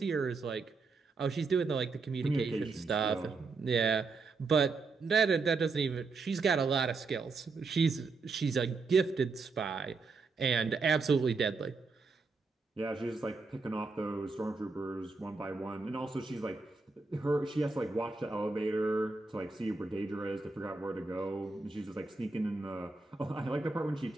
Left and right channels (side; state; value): left; quieter; 4.1 dB